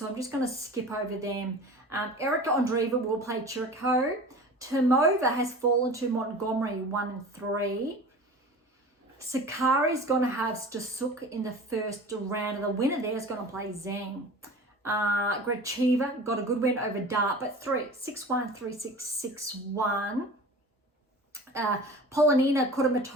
I'm just going to skip over them. Erika Andreeva will play Chirico. Tomova has fallen to Montgomery, 1-3. Sakari's going to have Stasuk in the first round, and the winner there is going to play Zheng. Gracheva got a good win over Dart, but 6-1, 3-6, 6-1. Polonina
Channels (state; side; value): normal; both; correlation 0.38